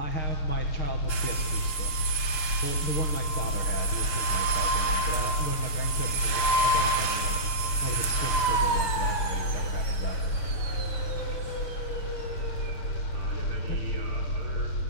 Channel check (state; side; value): late; right; 6.6 ms